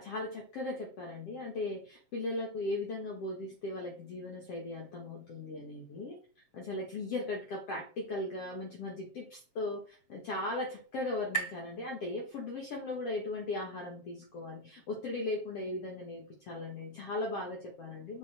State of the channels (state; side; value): late; right; 7.5 ms